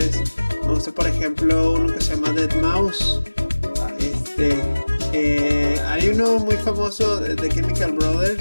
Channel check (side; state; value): both; inverted; correlation -1.00